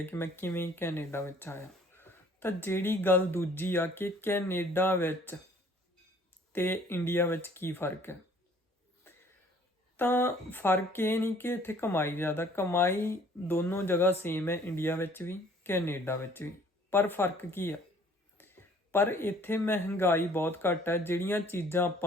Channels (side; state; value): both; normal; correlation 0.56